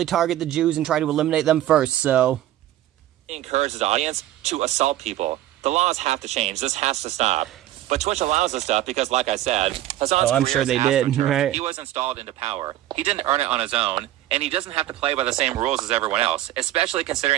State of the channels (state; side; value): quieter; left; 13.7 dB